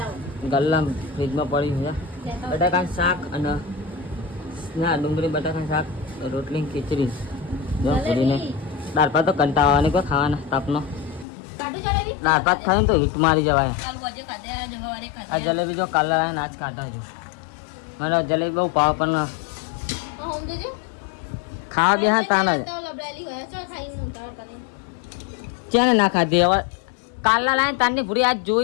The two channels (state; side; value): drops out; right; at 11.2 s